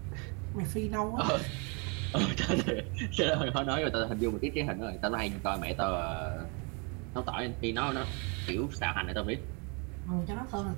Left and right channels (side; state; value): left; quieter; 33.6 dB